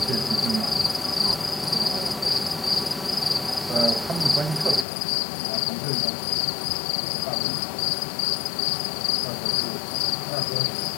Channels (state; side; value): drops out; right; at 4.9 s